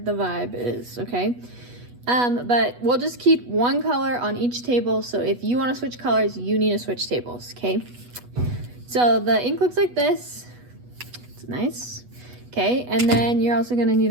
vibe is, okay? But we'll just keep one color on each table. So if you want to switch colors, you need to switch tables, okay? So the ink looks like this. It's nice. Okay, and then you're also gonna need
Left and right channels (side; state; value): left; late; 8.2 ms